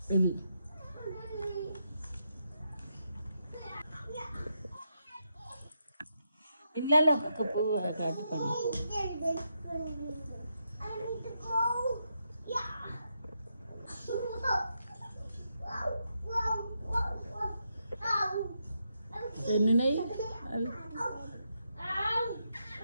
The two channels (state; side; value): inverted; both; correlation -0.83